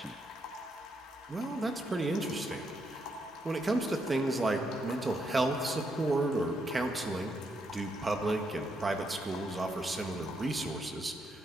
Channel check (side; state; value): both; normal; correlation 0.78